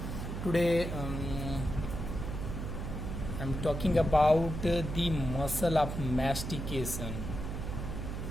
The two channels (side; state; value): right; noise; hum, 5 dB below the sound